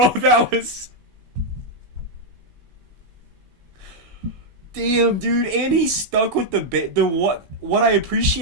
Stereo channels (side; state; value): left; late; 17 ms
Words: That was... Damn, dude. And he stuck with what I